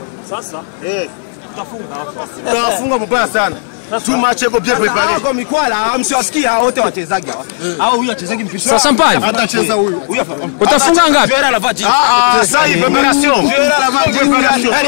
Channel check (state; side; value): silent; right; digital silence